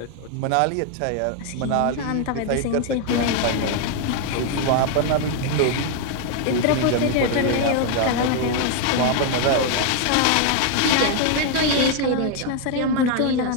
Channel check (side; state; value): both; different; correlation 0.01